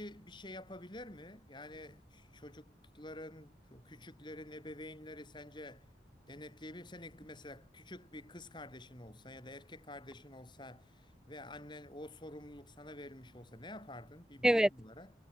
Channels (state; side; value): normal; both; correlation 0.88